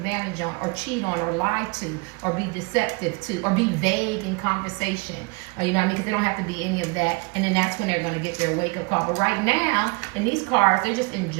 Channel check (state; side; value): quieter; left; 29.8 dB